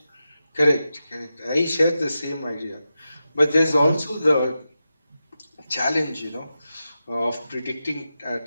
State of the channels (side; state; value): both; inverted; correlation -0.91